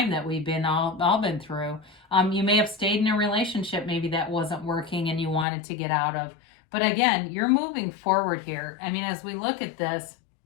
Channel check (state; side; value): drops out; right; at 5.5 s